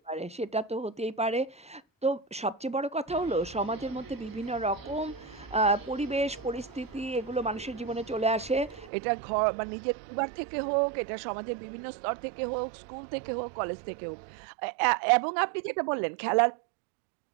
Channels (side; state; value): left; drops out; at 8.9 s